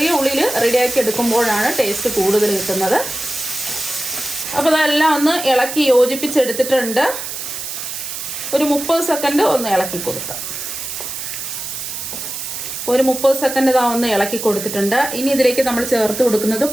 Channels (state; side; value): noise; right; hiss, 7 dB below the sound